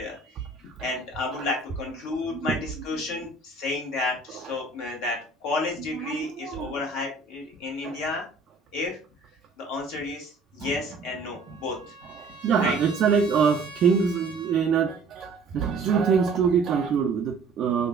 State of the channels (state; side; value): quieter; left; 3.8 dB